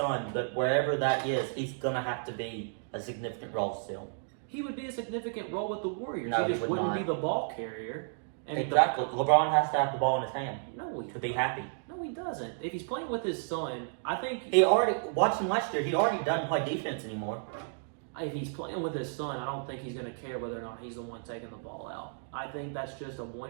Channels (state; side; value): silent; left; digital silence